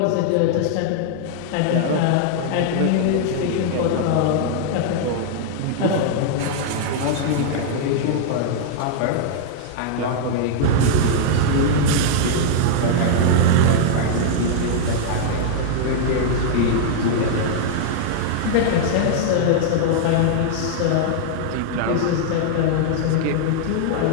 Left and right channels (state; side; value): different; both; correlation -0.01